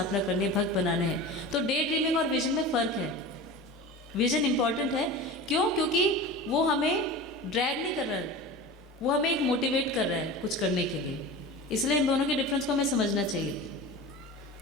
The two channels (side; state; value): both; normal; correlation 0.32